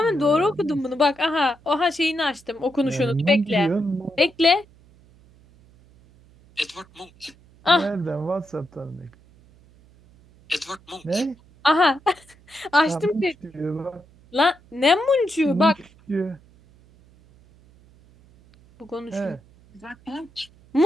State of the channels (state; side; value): noise; right; hum, 28 dB below the sound